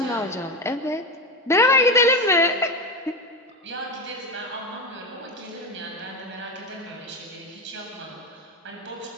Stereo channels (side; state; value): both; normal; correlation 0.18